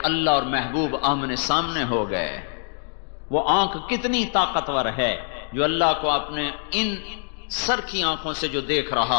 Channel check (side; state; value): right; silent; 63 dB below the other